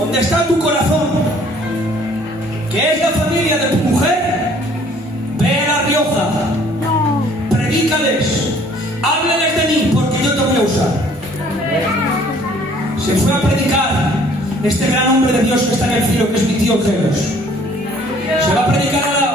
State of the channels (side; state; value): both; normal; correlation 0.57